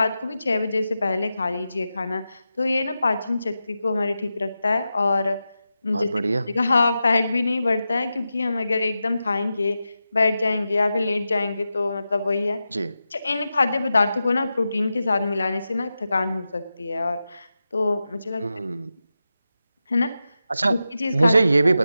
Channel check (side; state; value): both; inverted; correlation -0.91